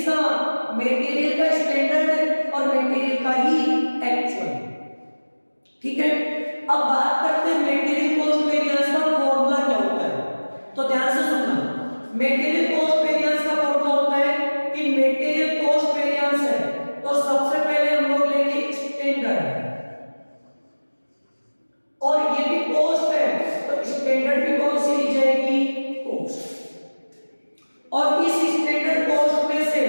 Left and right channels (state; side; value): inverted; both; correlation -1.00